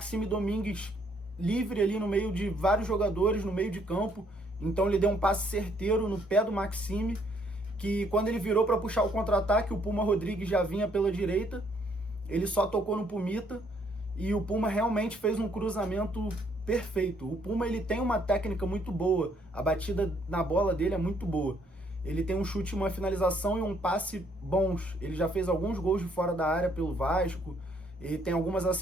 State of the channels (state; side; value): normal; both; correlation 0.68